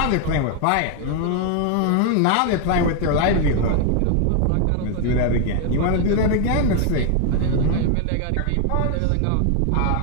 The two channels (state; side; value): different; both; correlation 0.00